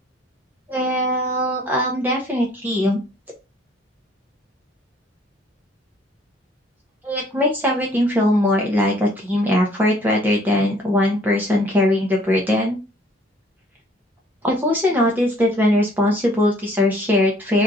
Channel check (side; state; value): both; normal; correlation 0.59